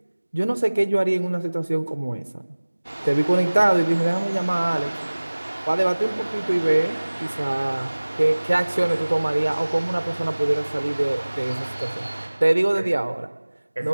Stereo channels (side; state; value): both; inverted; correlation -1.00